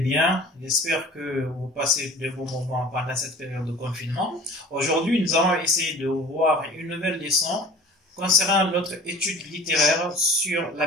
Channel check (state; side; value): normal; both; correlation 0.43